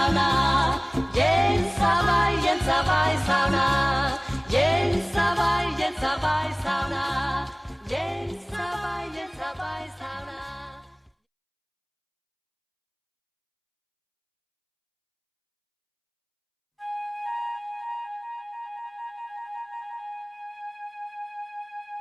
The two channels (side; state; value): both; identical; correlation 1.00